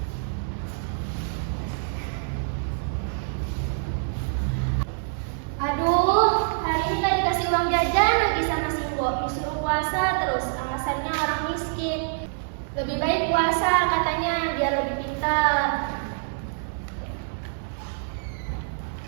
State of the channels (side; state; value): left; silent; 60 dB below the other